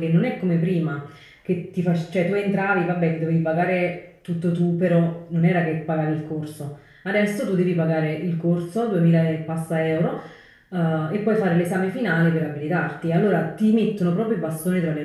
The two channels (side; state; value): both; identical; correlation 1.00